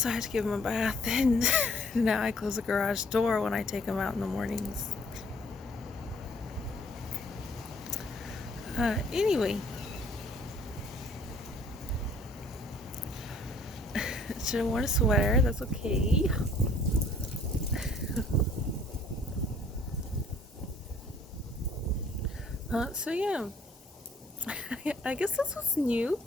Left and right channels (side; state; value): both; normal; correlation 0.58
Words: I had to give him a bath, and now I close the garage door when I take him out in the mornings. Anyway, should have worn a sweater. That's okay. So yeah, I guess this was new.